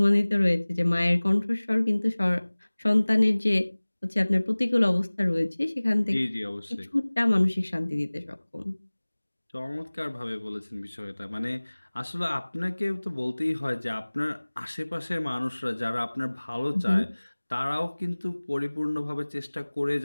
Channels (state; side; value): inverted; both; correlation -1.00